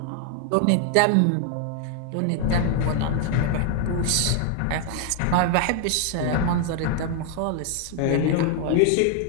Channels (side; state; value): both; different; correlation 0.00